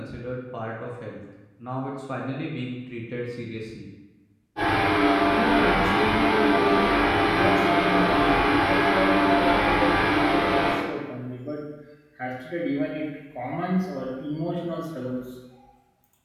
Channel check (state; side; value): identical; both; correlation 1.00